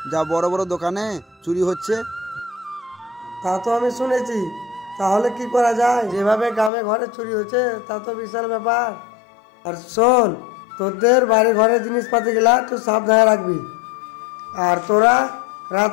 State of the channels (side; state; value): right; drops out; at 6.7 s